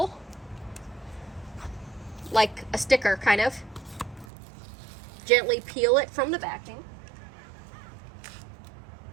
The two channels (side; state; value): left; drops out; at 4.2 s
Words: like a sticker, kind of. Gently peel it from the backing.